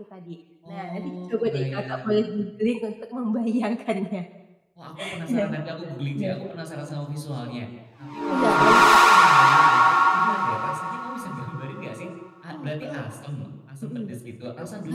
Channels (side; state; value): both; identical; correlation 1.00